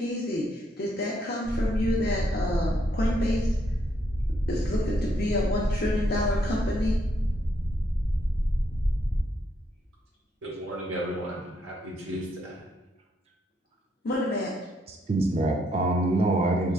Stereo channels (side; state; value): both; normal; correlation 0.74